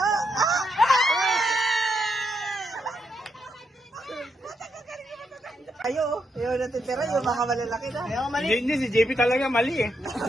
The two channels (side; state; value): both; normal; correlation 0.80